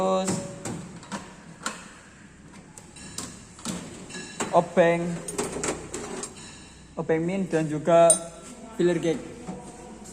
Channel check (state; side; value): identical; both; correlation 1.00